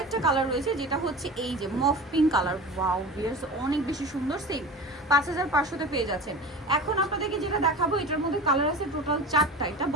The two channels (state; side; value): normal; both; correlation 0.33